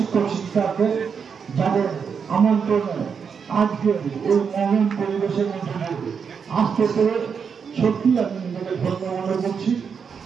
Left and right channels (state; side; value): quieter; left; 6.4 dB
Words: শিক্ষার্থী যাদের আমন্ত্রণে আজকে এই মহান পরিবেশের মধ্যে আসতে পেরে সত্যি আমি নিজেকে ধন্য মনে করছি।